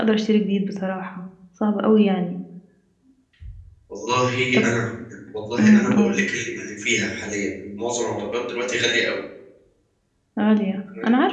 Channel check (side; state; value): both; identical; correlation 1.00